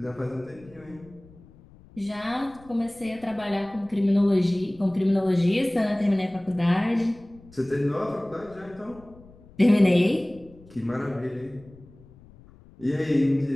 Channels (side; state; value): left; noise; rumble, 23 dB below the sound